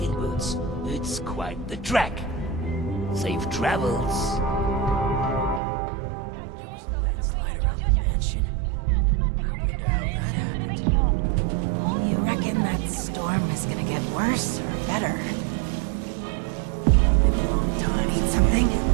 boots. It's quite the trek. Safe travels. You reckon that storm is gonna get worse or better? Been a long time. Need something?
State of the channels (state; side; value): drops out; left; at 5.6 s